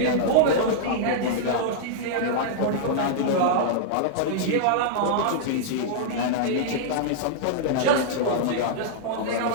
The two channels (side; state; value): both; different; correlation -0.02